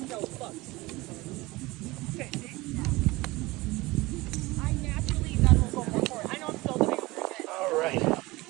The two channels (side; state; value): left; quieter; 21.2 dB